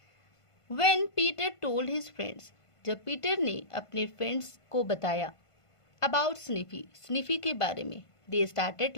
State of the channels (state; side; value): late; right; 1.5 ms